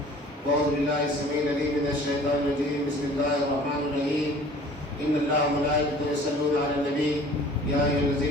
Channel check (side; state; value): both; normal; correlation 0.49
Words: أعوذ بالله السميع العليم من الشيطان الرجيم. بسم الله الرحمن الرحيم. إن الله وملائكته يصلون على النبي يا أيها